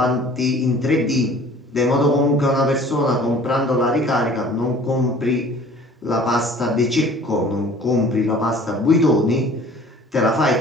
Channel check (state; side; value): normal; both; correlation 0.49